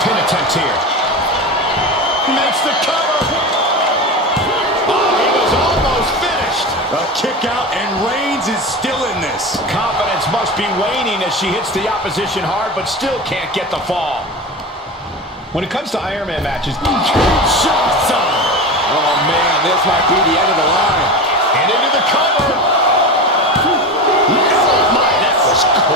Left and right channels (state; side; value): normal; both; correlation 0.26